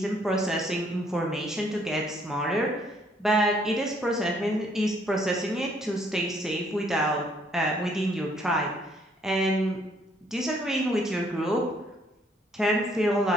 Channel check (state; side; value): normal; both; correlation 0.65